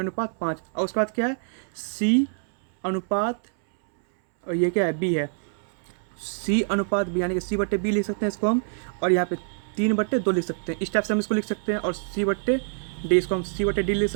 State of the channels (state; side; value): silent; left; 61 dB below the other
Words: और उसके बाद क्या है, C अनुपात, और ये क्या है, B है, C अनुपात B, यानी कि C/B लिख सकते हैं इसको हम। और यहाँ पे 3/2 लिख सकते हैं, इस टाइप से हम इसको लिख सकते हैं। और C/D, इसको हम C/D लिख